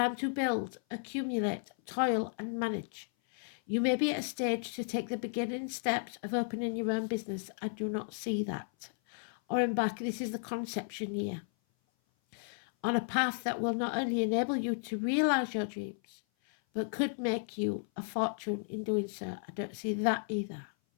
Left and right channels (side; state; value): right; silent; 55 dB below the other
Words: to build, accumulate, toil, and manage. You may be at a stage to take the beginning steps of opening your own business. I do not see that. Or embark, this is the conception year, on a path that will not only enable you to realize your dreams, but could make you a fortune in doing so. I don't see that either.